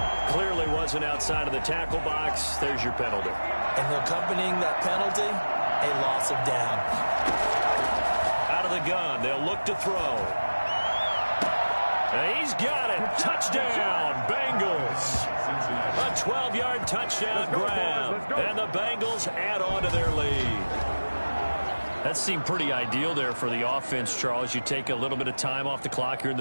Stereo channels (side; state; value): both; inverted; correlation -1.00